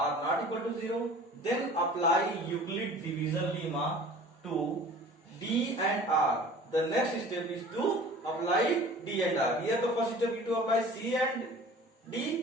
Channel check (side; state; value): both; normal; correlation 0.45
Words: not equal to 0, then apply Euclid division lemma to d and r. The next step is to apply d and r. Here the first step is to apply c and